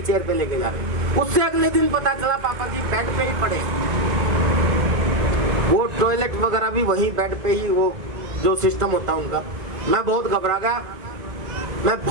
चेयर पे लेके जा रहे। उससे अगले दिन पता चला पापा जी बेड पे ही पड़े, वो टॉयलेट वगैरह भी वहीं बेड पे ही, वो जो सिस्टम होता है उनका। मैं बहुत घबरा गया, मैं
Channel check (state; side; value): late; left; 1.9 ms